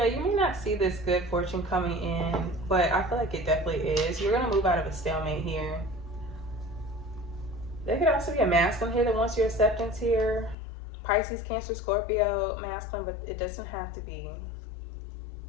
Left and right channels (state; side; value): drops out; right; at 10.6 s